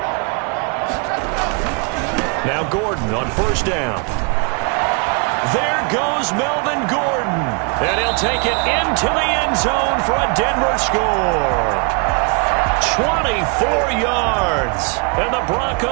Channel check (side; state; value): left; quieter; 34.6 dB